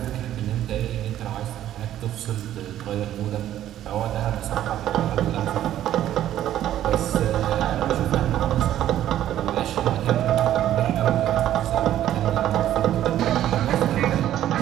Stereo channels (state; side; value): quieter; left; 12.1 dB